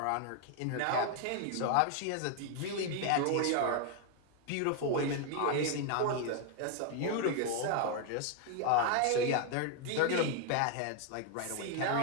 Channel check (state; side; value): different; both; correlation 0.00